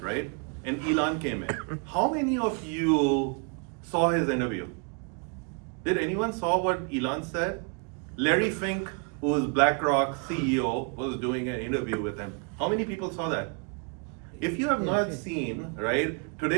right? And Elon came in. How many of you saw his interview? Did anyone saw what Elon said? Larry Fink, who is BlackRock CEO, was doing an interview with him. How many people saw that? If you have not seen, right,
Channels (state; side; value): quieter; left; 37.4 dB